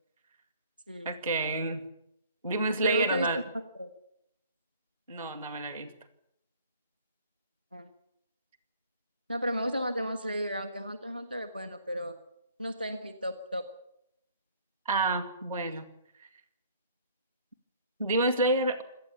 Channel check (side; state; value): both; inverted; correlation -0.54